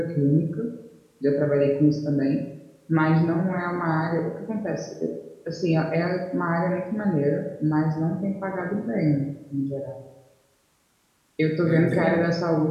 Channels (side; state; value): both; identical; correlation 1.00